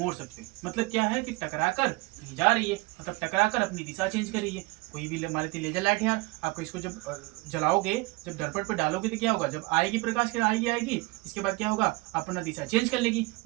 सकते हैं। मतलब क्या है कि टकराकर कहीं जा रही है, मतलब टकराकर अपनी दिशा चेंज कर रही है। कोई भी मान लेते लेजर लाइट है यार, आपको इसको जब जलाओगे, जब दर्पण पर डालोगे तो क्या होगा, जब आएगी प्रकाश के आएगी, इसके बाद क्या होगा, अपना दिशा चेंज कर लेगी,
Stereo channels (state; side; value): quieter; left; 24.2 dB